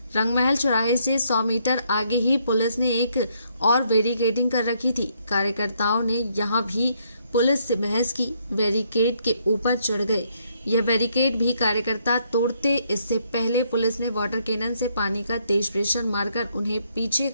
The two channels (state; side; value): inverted; both; correlation -0.72